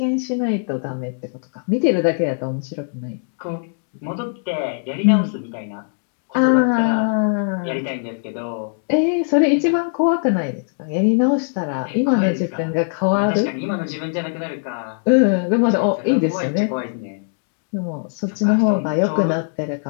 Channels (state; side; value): silent; right; digital silence